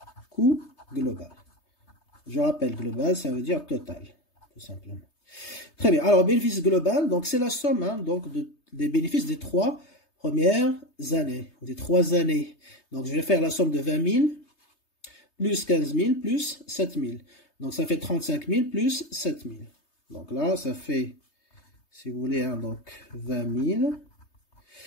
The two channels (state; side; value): late; right; 3.3 ms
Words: coût global. Je rappelle, global, ça veut dire total, tout simplement. Très bien. Alors, bénéfice global, donc c'est la somme donc des bénéfices des 3 premières années, ou des 3 années. Donc, je vais faire la somme de 20 000 plus 15 000 plus 7 000. Donc, ça fait 35 000 plus 7 000. Donc là, ça fait si vous voulez, hein, donc 20 000,